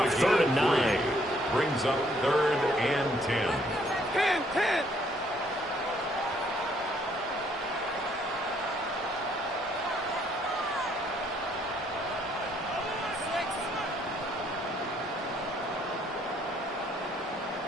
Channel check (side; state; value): both; normal; correlation 0.67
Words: 3rd and 9. Brings up 3rd and 10. 10.